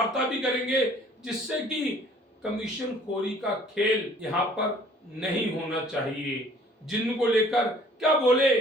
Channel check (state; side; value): normal; both; correlation 0.55